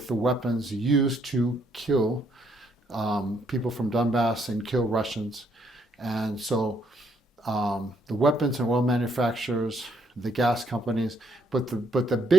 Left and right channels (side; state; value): both; normal; correlation 0.71